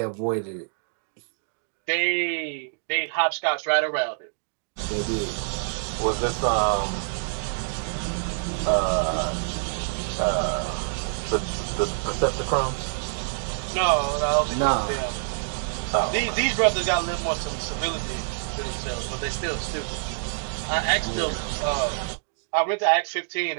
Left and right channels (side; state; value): left; silent; digital silence